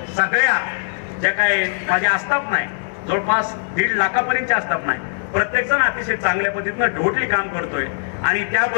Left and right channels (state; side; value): silent; right; digital silence